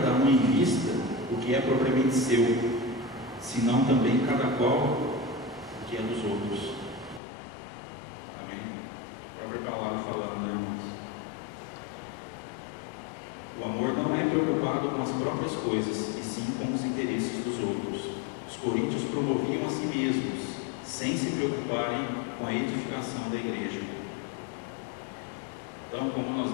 um em vista o que é propriamente seu, senão também cada qual o que é dos outros. Amém? A própria palavra falando, né, irmãos? O amor não é preocupado com as próprias coisas, e sim com os interesses dos outros. Os coríntios promoviam a si mesmos, sem se preocuparem com a edificação da igreja. Então, como nós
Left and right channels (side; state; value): right; drops out; at 7.2 s